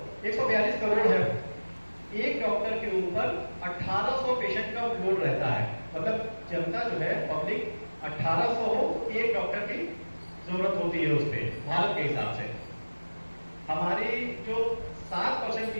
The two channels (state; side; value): inverted; both; correlation -1.00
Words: करोड़ है। एक डॉक्टर के ऊपर 1800 पेशेंट का लोड रहता है। मतलब जनता जो है पब्लिक 1800 हो, एक डॉक्टर की जरूरत होती है उस पर भारत के हिसाब से। हमारी जो 7%